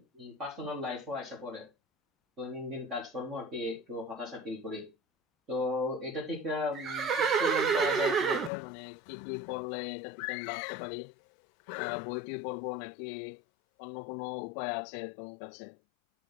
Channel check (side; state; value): right; drops out; at 8.5 s